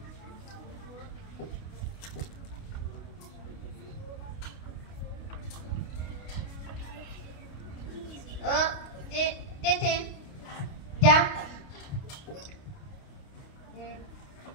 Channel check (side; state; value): right; late; 29 ms